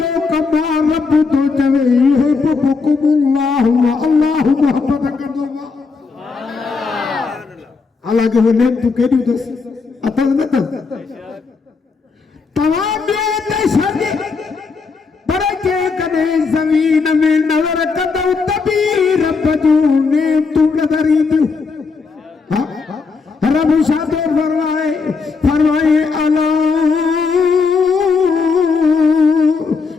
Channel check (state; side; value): quieter; right; 4.8 dB